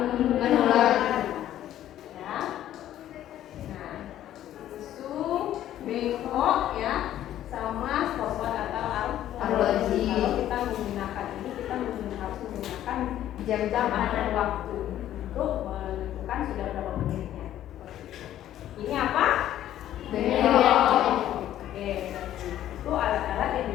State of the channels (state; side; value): quieter; right; 12.2 dB